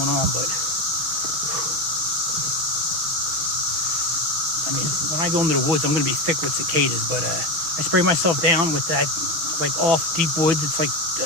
on, but I mean, when I go into the woods, I'm going to be thick with cicadas, but I spray myself down with that, like, off deep woods. It's like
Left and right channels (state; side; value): late; left; 6.5 ms